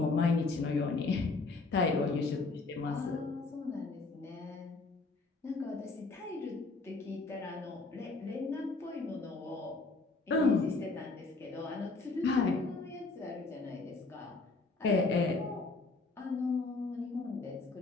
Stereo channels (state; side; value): quieter; right; 3.7 dB